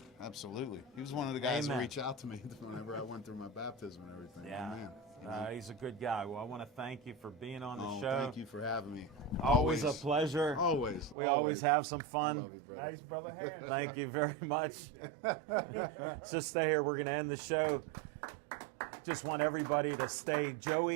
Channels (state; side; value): drops out; left; at 11.2 s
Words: Absolutely. He was one of the guys Amen. to reach out to me whenever I went through my baptism and everything. Yeah. Man, you know? He's a good guy. Well, I want to thank you for being on the Oh, show. thank you for having me. Always a pleasure. Always. We always have some I fun. love you, brother. Nice, brother. Harris. Thank you very much. Just stay here. We're going to end the show. Just want everybody to stay